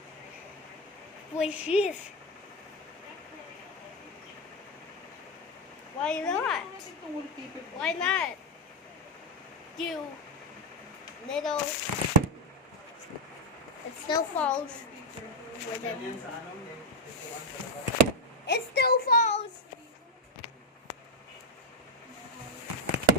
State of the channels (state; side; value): normal; both; correlation 0.07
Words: Which is. Why not? Why not? You little. It still falls. With it. Yan sa ano, yung picturean sa labas. It still falls.